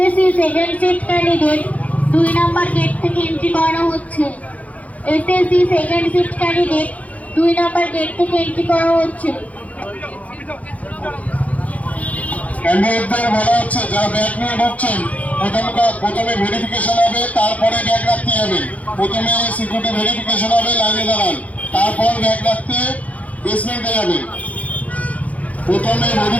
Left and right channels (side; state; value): right; late; 0.069 ms